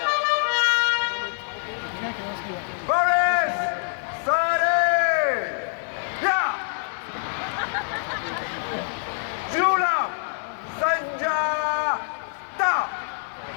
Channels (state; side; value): silent; right; 55 dB below the other